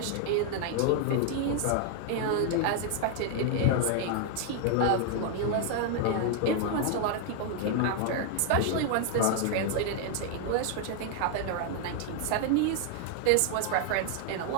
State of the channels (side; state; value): both; different; correlation 0.00